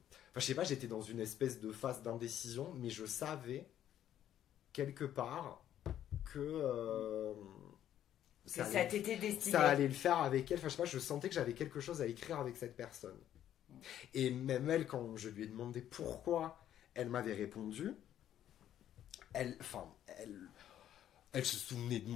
sais pas, j'étais dans une espèce de phase d'indécision, mais je savais quelque part que ça t'était destiné. Ça allait le faire avec elle. Enfin, je sais pas, je sentais que j'avais quelque chose à écrire avec cette personne. Et même elle, quand je lui ai demandé pourquoi elle m'avait répondu, elle se souvenait de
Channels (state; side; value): quieter; right; 11.1 dB